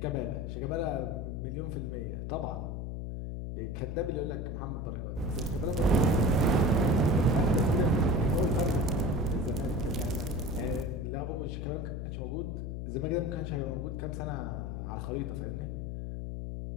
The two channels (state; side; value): noise; left; hum, 5 dB below the sound